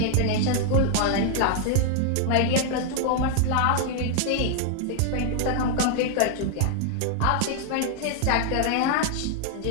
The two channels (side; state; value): both; different; correlation 0.00